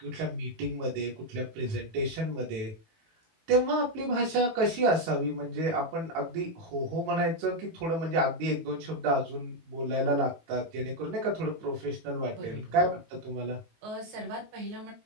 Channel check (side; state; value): left; late; 18 ms